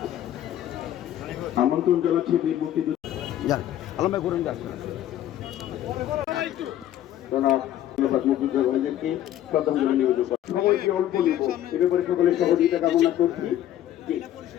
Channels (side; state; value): right; quieter; 12.1 dB